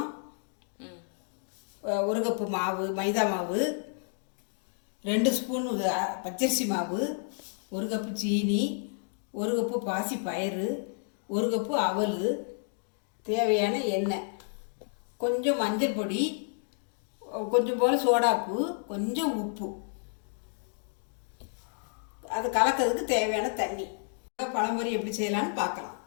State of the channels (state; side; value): silent; right; 57 dB below the other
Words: 1 கப்பு மாவு, மைதா மாவு, 2 ஸ்பூன் பச்சரிசி மாவு, 1 கப்பு சீனி, 1 கப்பு பாசி பயிறு, 1 கப்பு அவல், தேவையான எண்ணெய், கொஞ்சம் மஞ்சள் பொடி, கொஞ்சம் போல் சோடாப்பு, கொஞ்சம் உப்பு, அது கலக்கிறதுக்கு தேவையான தண்ணி. பழம்பொரி எப்படி செய்யலான்னு பார்க்கலாம்.